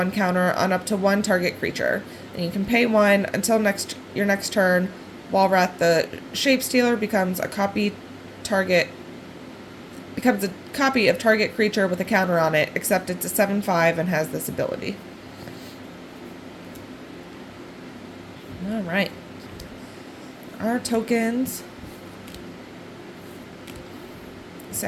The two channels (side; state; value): both; identical; correlation 1.00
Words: counter on up to 1 target creature. And you can pay 1 until your next turn. Walrath the Shapestealer becomes a copy of target creature with a counter on it, except it's a 7/5 and has this ability. Alright. Our tokens.